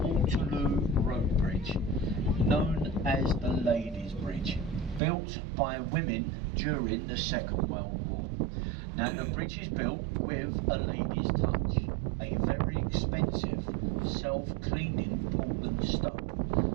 Road Bridge, known as the Ladies' Bridge, built by women during the Second World War. Now the bridge is built with a lady's touch, a very expensive self-cleaning Portland stone.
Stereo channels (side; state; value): left; drops out; at 5.0 s